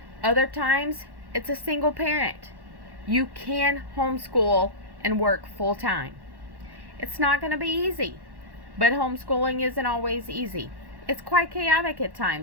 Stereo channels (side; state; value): left; late; 1.1 ms